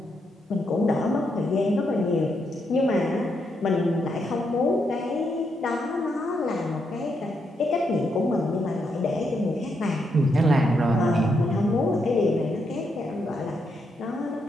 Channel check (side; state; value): both; normal; correlation 0.80